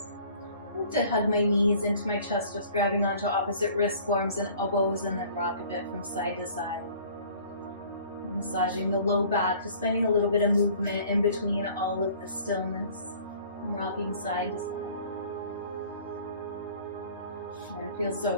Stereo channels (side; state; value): both; inverted; correlation -0.51